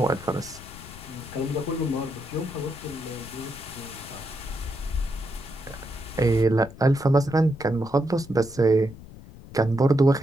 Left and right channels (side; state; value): left; noise; rumble, 17 dB below the sound